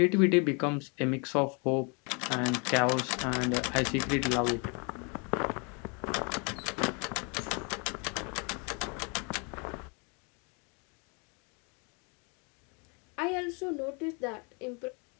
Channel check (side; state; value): right; quieter; 34.1 dB